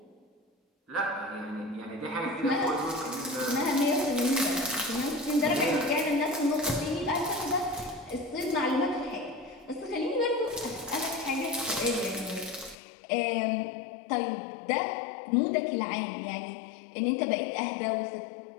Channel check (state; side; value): drops out; right; at 12.8 s